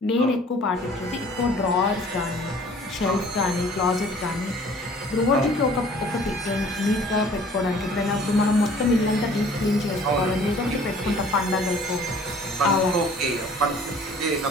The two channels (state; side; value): normal; both; correlation 0.52